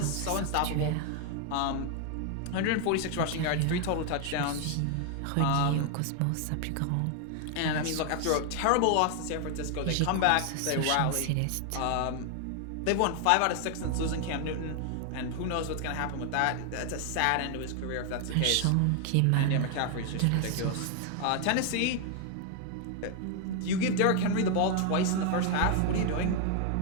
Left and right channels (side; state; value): both; different; correlation 0.00